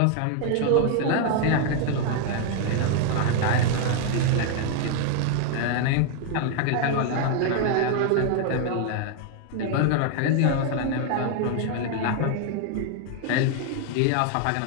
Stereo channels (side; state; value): both; different; correlation 0.00